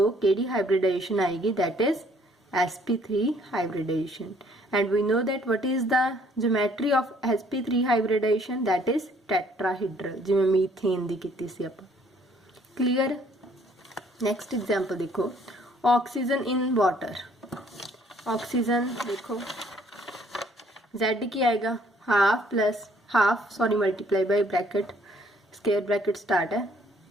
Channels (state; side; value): normal; both; correlation 0.62